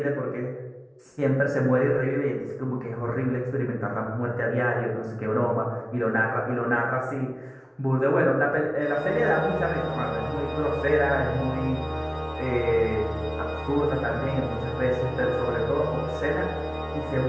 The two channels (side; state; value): both; identical; correlation 1.00